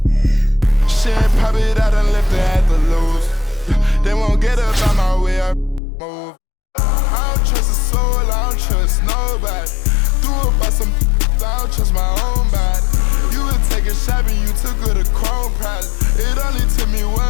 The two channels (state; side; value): drops out; right; at 5.8 s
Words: Shit, pop it out and left it at the loose. They won't get up on my way, I move. I don't trust a soul, I don't trust nobody. Threw up by some, I don't trust my own body. You would take a shot and you took her to Chrome Palace. It only took me